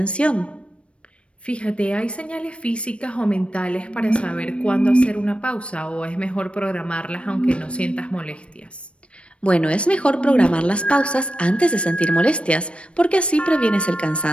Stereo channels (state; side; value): late; right; 0.060 ms